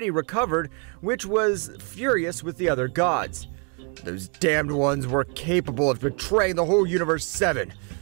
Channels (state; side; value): quieter; left; 37.4 dB